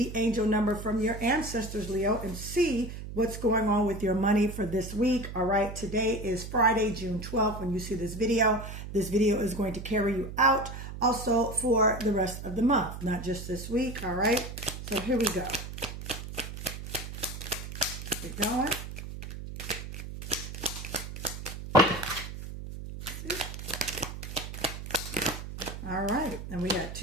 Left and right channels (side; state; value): right; noise; hum, 9 dB below the sound